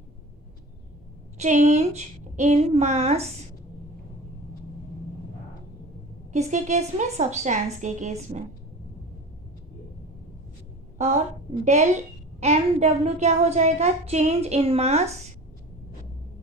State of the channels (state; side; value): normal; both; correlation 0.36